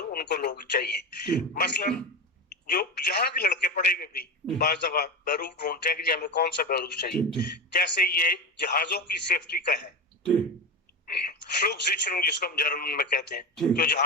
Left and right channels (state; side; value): normal; both; correlation 0.20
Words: ان کو لوگ چاہیے. مثلاً جو یہاں کے لڑکے پڑھے ہوئے بھی بعض دفعہ بیروف ڈھونڈتے ہیں کہ جی ہمیں کون سا بیروف چاہیے. جیسے یہ جہازوں کی سیفٹی کا ہے, فلوک سیچرنگ جس کو ہم جرمن میں کہتے ہیں, جو